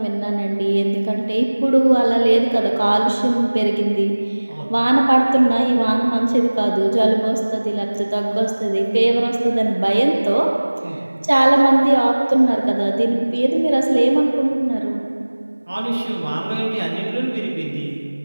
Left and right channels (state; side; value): inverted; both; correlation -1.00